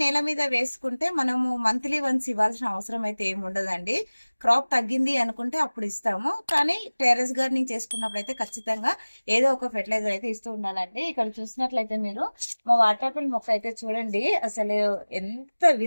నేల మీద వేసుకుంటే మనము మంత్లీ వన్స్ ఇవ్వాల్సిన అవసరం అయితే ఏమి ఉండదండి. క్రాప్ తగ్గింది అనుకుంటే అప్పుడు ఇస్తాము. కానీ టెర్రస్ గార్డెనింగ్ చేసుకున్నప్పుడు అయితే ఖచ్చితంగా ఏదో ఒక ఫెర్టిలైజర్ అయితే ఇస్తూ ఉండాలండి. ఇక్కడ చూసినట్లయితే మీరు మా వాటర్ ఆపిల్ మొక్క అయితే చూడండి, అసలు ఎంత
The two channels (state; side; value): inverted; both; correlation -1.00